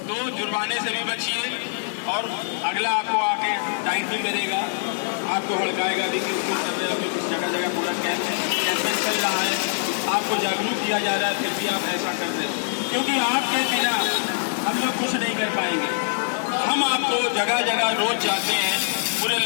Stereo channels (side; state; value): right; silent; digital silence